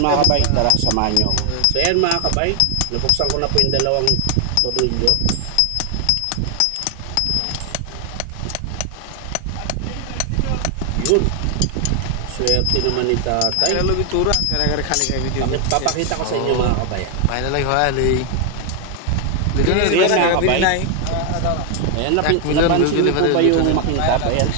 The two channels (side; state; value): both; different; correlation 0.01